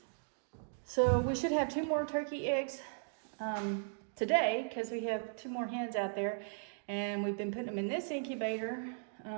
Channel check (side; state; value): left; silent; digital silence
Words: So we should have 2 more turkey eggs today because we have 2 more hens out there, and we've been putting them in this incubator.